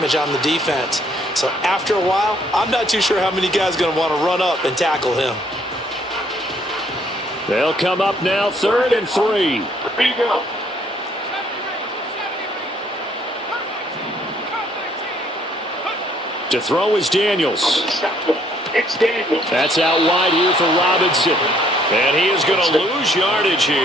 on the defense. So after a while, I'm not too sure how many guys are going to want to run up and tackle him. They'll come up now 3rd and 3. To throw is Daniels. That's out wide here for Robinson. And he is going to lose yardage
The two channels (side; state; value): both; normal; correlation 0.65